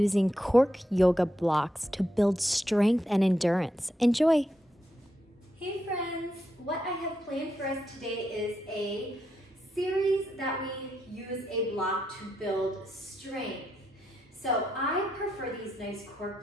cork yoga blocks to build strength and endurance. Enjoy! Hey friends, what I have planned for us today is a series that we use a block to build strength. So I prefer these nice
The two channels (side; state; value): both; normal; correlation 0.82